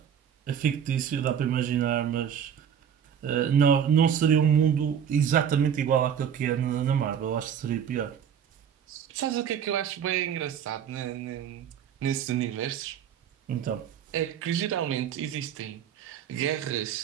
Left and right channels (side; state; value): left; quieter; 8.5 dB